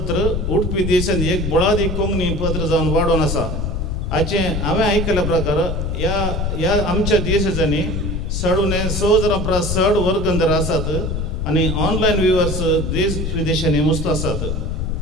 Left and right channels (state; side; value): noise; left; rumble, 2 dB below the sound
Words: उडपी देशांत एक बळादी कोंकणी पत्र जावन वाडोवन आसा. हांवें आयकल्या प्रकार ह्या आमच्या देशाच्यांनी सडूने सहज चड वर्गंधर आसात आनी ऑनलायन व्ह्युअर्स देश विदेशांनी मस्त आसात.